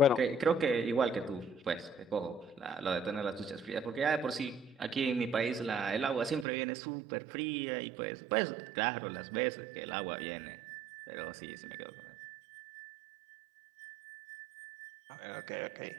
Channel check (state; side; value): drops out; left; at 6.5 s